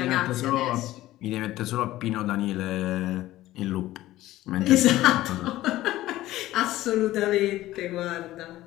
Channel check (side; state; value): right; quieter; 15.7 dB